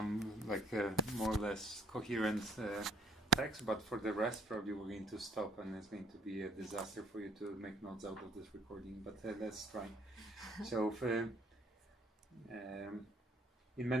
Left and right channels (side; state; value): both; normal; correlation 0.63